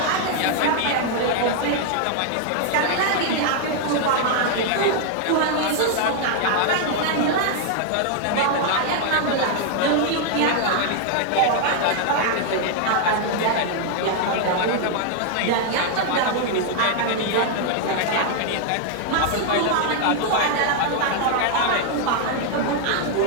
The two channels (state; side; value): different; both; correlation 0.00